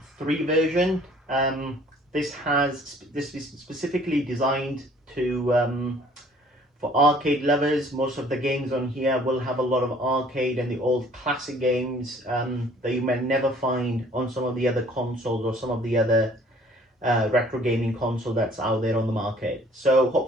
version. This is specifically designed to for arcade lovers. Most of the games on here will have a lot of arcade and the old classic games that you may never find on some of the other consoles or some of the other retro gaming console that's out there on the market. So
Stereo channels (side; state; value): both; normal; correlation 0.56